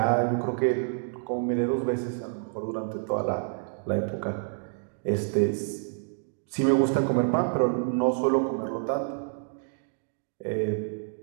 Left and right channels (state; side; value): silent; left; digital silence